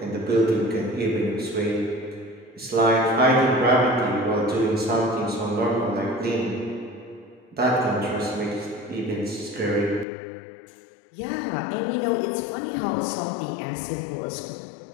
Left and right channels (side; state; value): right; drops out; at 10.1 s